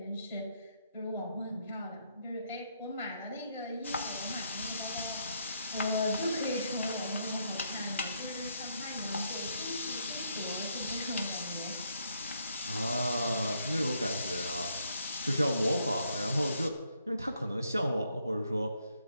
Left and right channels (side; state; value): both; inverted; correlation -0.74